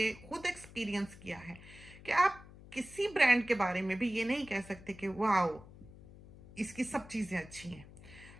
खुद एक्सपीरियंस किया है कि आप किसी ब्रांड के बारे में भी ये नहीं कह सकते कि वाओ इसकी सब चीज़ें अच्छी हैं।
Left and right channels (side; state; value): left; noise; hum, 19 dB below the sound